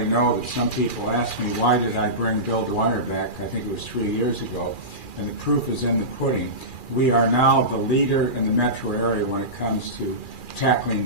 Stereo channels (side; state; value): right; late; 2.4 ms